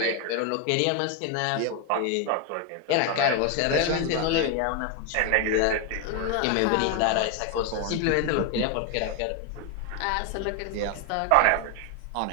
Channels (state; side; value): different; both; correlation 0.01